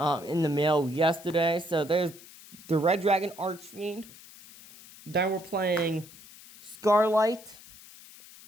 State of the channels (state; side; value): noise; left; hiss, 20 dB below the sound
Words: the mail yesterday. So there's the Red Dragon Archfiend. Then we're playing Scarlight